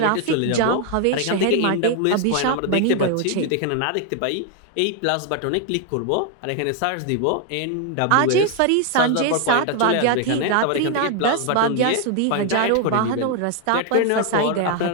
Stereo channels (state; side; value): different; both; correlation 0.01